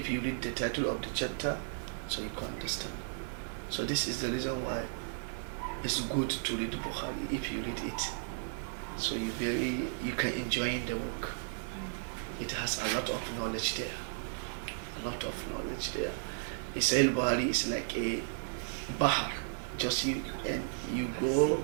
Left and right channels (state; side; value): silent; left; digital silence